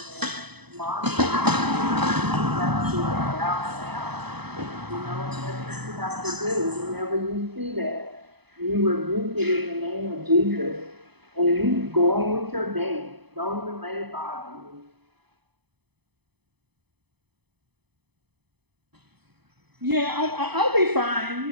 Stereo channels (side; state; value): left; late; 0.98 ms